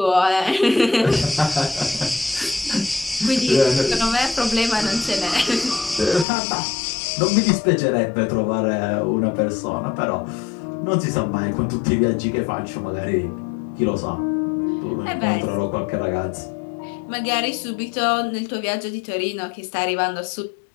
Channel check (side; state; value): right; drops out; at 6.2 s